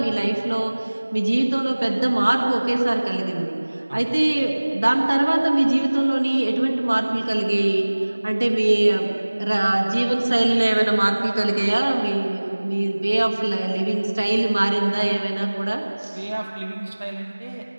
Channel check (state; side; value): inverted; both; correlation -1.00